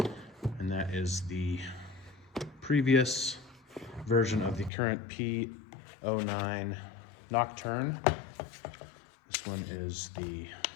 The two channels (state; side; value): drops out; right; at 4.7 s